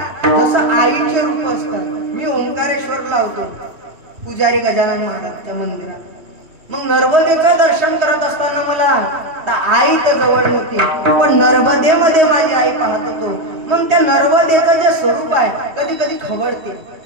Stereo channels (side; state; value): left; late; 3.1 ms